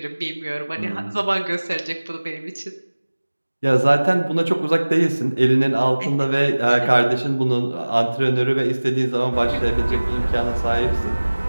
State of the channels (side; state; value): both; inverted; correlation -1.00